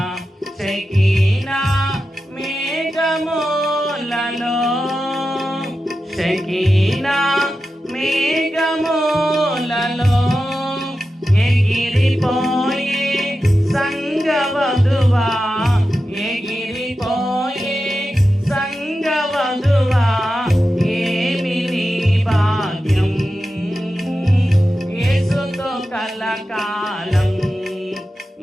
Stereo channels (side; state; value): both; normal; correlation 0.92